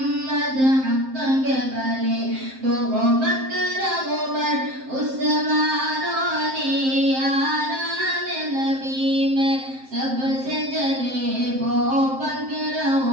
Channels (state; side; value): late; left; 7.6 ms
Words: हक के बले वो बकर उमर उस्मान अली यारान नबी में सबसे जले वो बकर